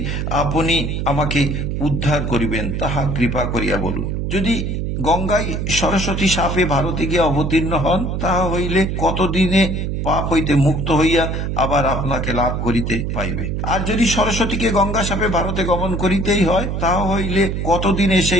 আপনি আমাকে উদ্ধার করিবেন তাহা কৃপা করিয়া বলুন। যদি গঙ্গায় সরস্বতী সাপে ভারতে গিয়া অবতীর্ণ হন, তাহা হইলে কতদিনে পাপ হইতে মুক্ত হইয়া আবার আপনাকে লাভ করিতে পাইবে। আর যদি সরস্বতীকে গঙ্গা সাপে ভারতে গমন করিতেই হয়, তাহা হইলে কতদিনে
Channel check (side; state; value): right; noise; hum, 2 dB below the sound